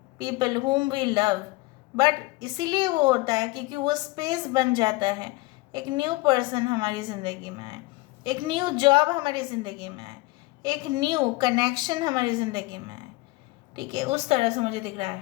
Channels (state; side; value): quieter; right; 22.1 dB